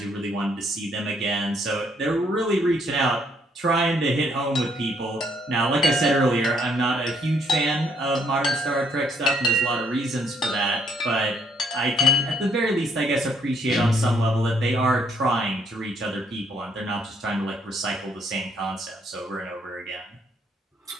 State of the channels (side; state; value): both; normal; correlation 0.69